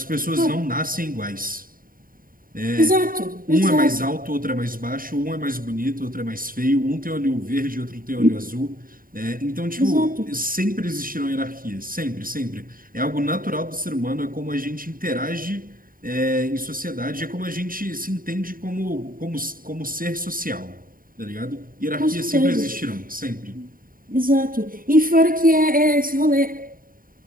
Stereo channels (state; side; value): late; left; 0.41 ms